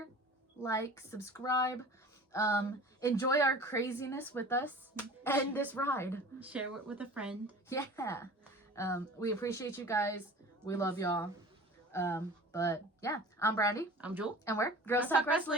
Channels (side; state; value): both; normal; correlation 0.41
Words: like, subscribe, enjoy our craziness with us and this ride. Share it with a friend. Yeah. We appreciate you guys. We love y'all. But yeah, I'm Brandy. I'm Jewel. And we're Girls Talk